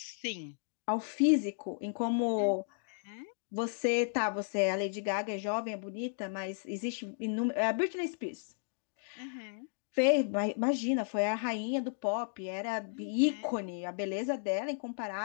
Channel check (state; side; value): silent; right; digital silence